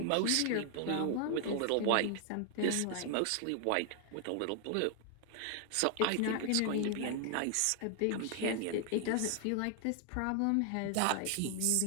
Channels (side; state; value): both; different; correlation 0.00